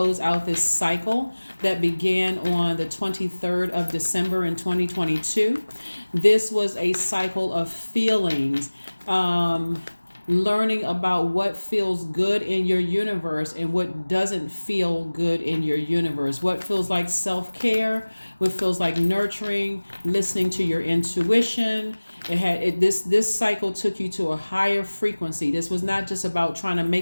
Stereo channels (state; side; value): inverted; both; correlation -1.00